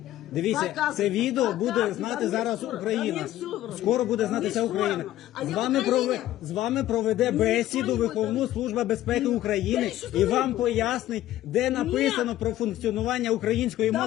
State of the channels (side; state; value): right; quieter; 13.9 dB